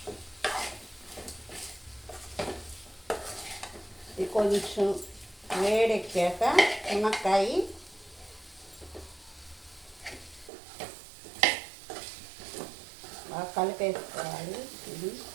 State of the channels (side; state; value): left; drops out; at 10.5 s